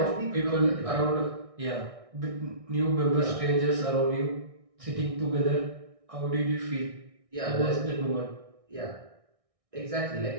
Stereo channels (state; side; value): late; left; 1.6 ms